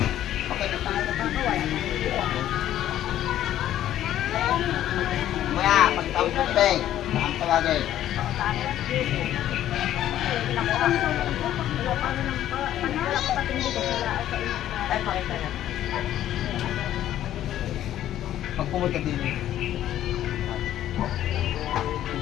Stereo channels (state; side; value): quieter; right; 12.2 dB